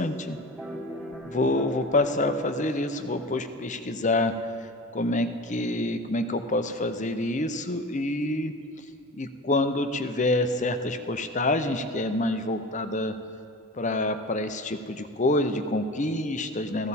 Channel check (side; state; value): both; normal; correlation 0.34